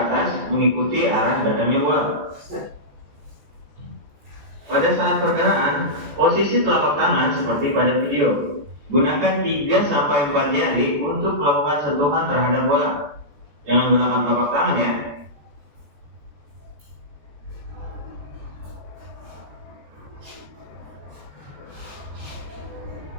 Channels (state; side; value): late; left; 14 ms